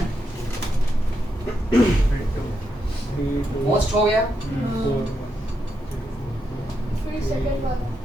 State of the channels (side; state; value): both; normal; correlation 0.83